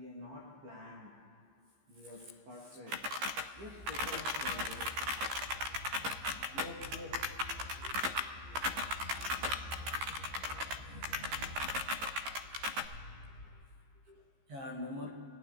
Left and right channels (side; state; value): left; late; 15 ms